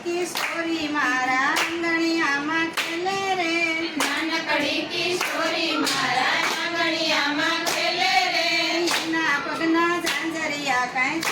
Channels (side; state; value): both; identical; correlation 1.00